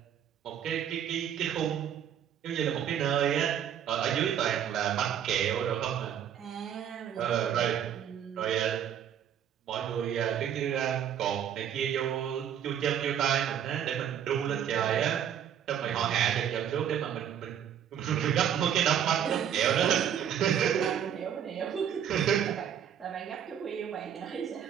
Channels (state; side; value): quieter; left; 9.3 dB